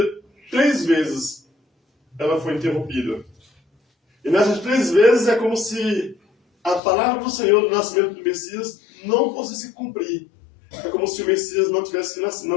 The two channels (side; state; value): right; drops out; at 6.8 s